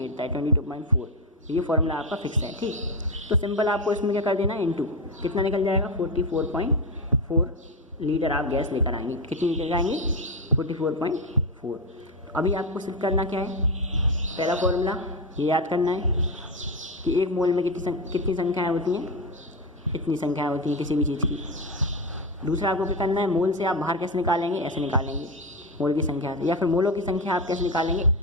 है 22.4। ये फॉर्मूला आपका फिक्स है। ठीक, तो सिंपल आपको इसमें क्या कर देना है, इंटू, कितना निकल जाएगा? 44.4 लीटर आप गैस लेकर आएंगे। कितनी लीटर आएंगे? 44.4। अभी आपको सिर्फ करना क्या है, पहला फॉर्मूला ये याद करना है कि एक मोल में कितनी संख्याएँ होती हैं, इतनी संख्याएँ होती हैं किसी भी चीज़ की। दूसरा आपको क्या करना है, मोल से आप बाहर कैसे निकालेंगे, ऐसे निकालेंगे मोल की संख्या से, या फिर मोलों की संख्या आप कैसे निकालेंगे,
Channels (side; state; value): both; normal; correlation 0.13